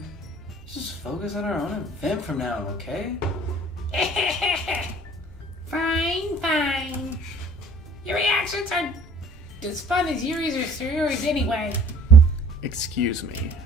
Let's just focus on our own event from now, okay? Fine. Your reactions are as fun as Yuri's or Sayori's anyway. Excuse me.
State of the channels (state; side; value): normal; both; correlation 0.52